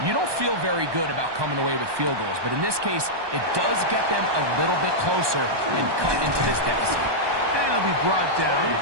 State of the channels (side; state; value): left; late; 1.2 ms